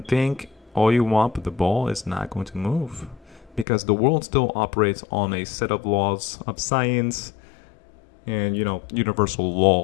think all you want, but the ball is not going to move because the world still operates on a set of laws of science and, universal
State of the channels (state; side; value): drops out; right; at 3.7 s